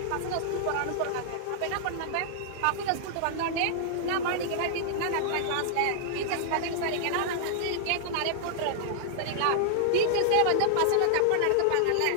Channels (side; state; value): both; different; correlation -0.01